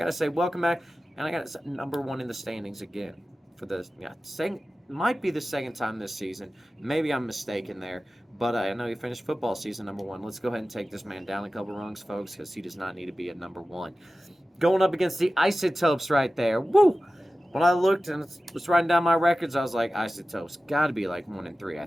to say, welcome back, and I got to say, number 1 in the standings again for the, might be the second time this season. Maybe I'm mistaken there, but I know he finished football season number 1. Let's go ahead and take this man down a couple rungs, folks, because he does not need to be at number 1. Going up against the Isotopes right there. Woo! When I looked and was writing down my records, I was like, Isotopes, got to be like 1-3, I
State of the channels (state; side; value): normal; both; correlation 0.95